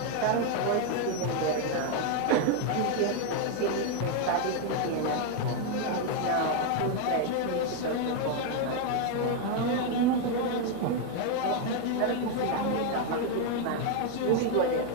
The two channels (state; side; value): different; both; correlation 0.01